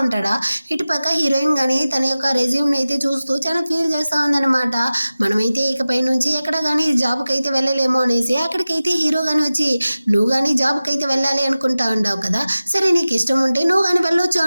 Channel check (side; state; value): both; inverted; correlation -0.96